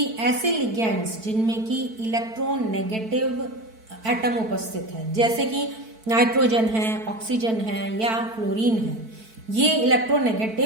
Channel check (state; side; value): late; left; 4.5 ms